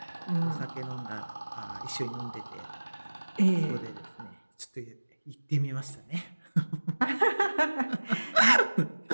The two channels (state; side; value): inverted; both; correlation -1.00